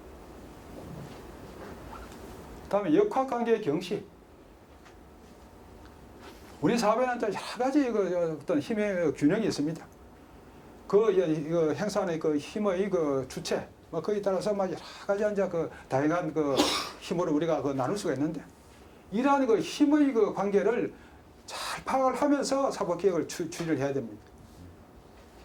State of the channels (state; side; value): identical; both; correlation 1.00